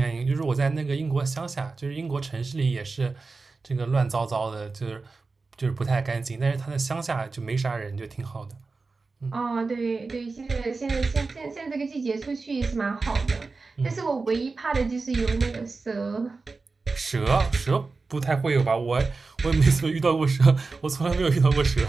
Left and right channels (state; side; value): quieter; left; 4.0 dB